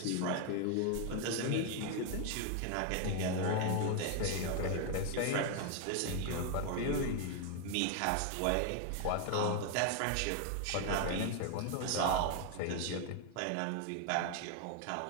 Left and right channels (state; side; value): different; both; correlation 0.01